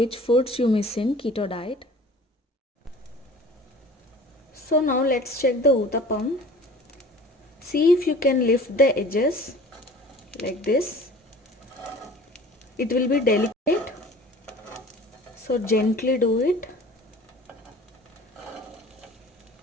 foods you miss in keto diet. So now let's check the uttapam. See if you can lift the edges like this. It will be delicate, so gently do it.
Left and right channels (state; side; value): normal; both; correlation 0.45